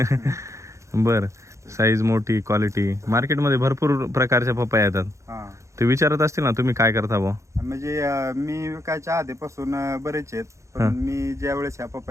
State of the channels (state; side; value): late; left; 0.14 ms